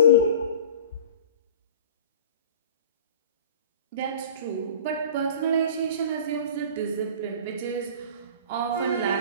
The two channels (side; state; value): both; inverted; correlation -0.39